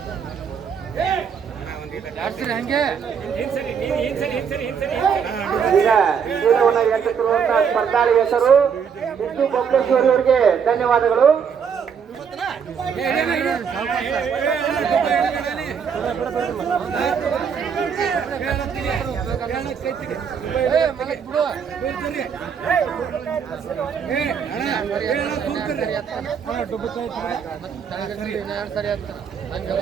ಈಗ ಚೀಲವನ್ನು ಎತ್ತುತ್ತಿರುವಂತಹ ಸ್ಪರ್ಧಾಳಿ ಹೆಸರು ಸಿದ್ದು ಬೊಬ್ಲೇಶ್ವರಿ ಅವರಿಗೆ ಧನ್ಯವಾದಗಳು.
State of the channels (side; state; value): left; quieter; 6.9 dB